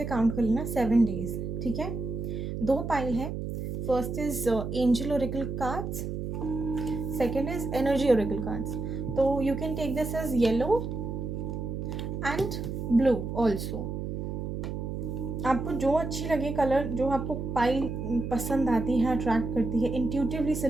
काउंट कर लेना 7 डेज़, ठीक है। 2 पाइल है। First is angel oracle cards, second is energy oracle cards. तो you can take this as yellow and blue also. आपको जो अच्छी लगे कलर, जो आपको पाइल पसंद आती है, अट्रैक्ट करती है, इंट्यूटिवली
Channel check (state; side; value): noise; right; hum, 4 dB below the sound